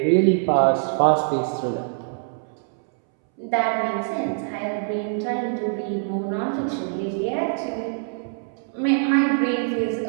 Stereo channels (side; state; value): left; silent; 63 dB below the other